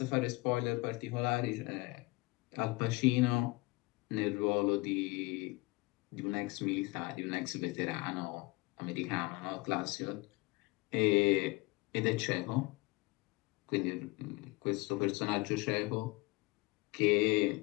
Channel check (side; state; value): right; quieter; 24.0 dB